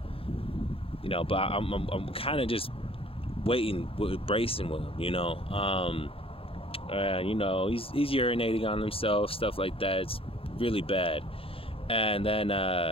I'm kind of just waiting, bracing with him, he's urinating on himself, stuff like that. It's really bad. And then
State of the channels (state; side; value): late; right; 0.27 ms